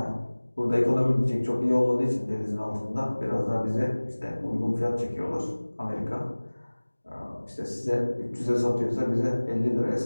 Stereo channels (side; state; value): both; inverted; correlation -1.00